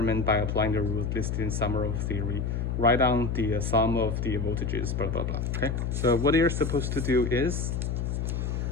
by applying the rules listed in summary of theory. Write down the sum of the voltages, blah blah blah. Okay, so what you're supposed to do is,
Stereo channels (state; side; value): noise; left; hum, 1 dB below the sound